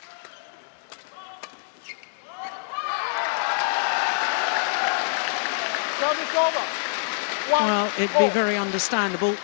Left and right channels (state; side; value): silent; right; digital silence